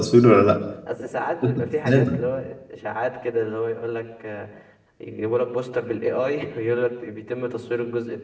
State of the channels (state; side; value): identical; both; correlation 1.00